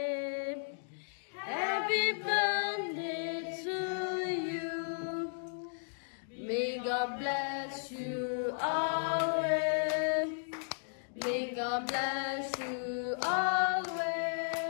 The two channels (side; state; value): right; silent; digital silence